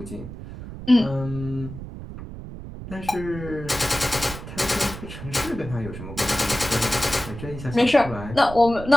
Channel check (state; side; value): noise; right; rumble, 11 dB below the sound